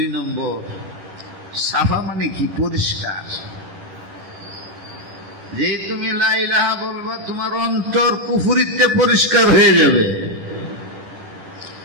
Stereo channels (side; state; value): left; late; 10 ms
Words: নম্বর, সাফা মানে কি? পরিষ্কার। যে তুমি লা ইলাহা বলবা, তোমার অন্তর কুফরিতে পরিষ্কার হয়ে যাবে।